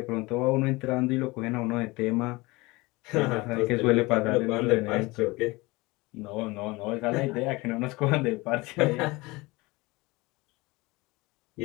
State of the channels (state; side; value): quieter; right; 22.9 dB